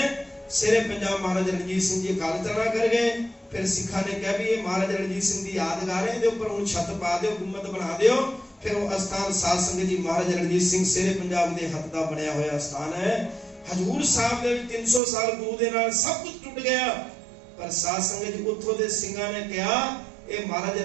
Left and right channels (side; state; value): left; drops out; at 15.0 s